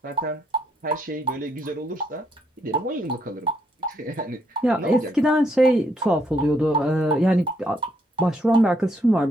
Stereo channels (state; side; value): normal; both; correlation 0.73